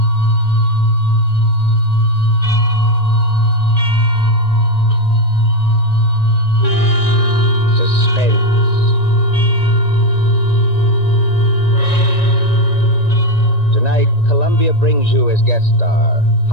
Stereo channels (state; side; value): late; right; 1.9 ms